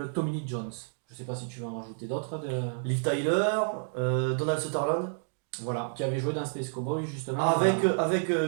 Tommy Lee Jones. Je ne sais pas si tu veux en rajouter d'autres. Liv Tyler, Donald Sutherland, Voilà, qui avait joué dans Space Cowboy, justement. avec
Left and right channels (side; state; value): left; silent; digital silence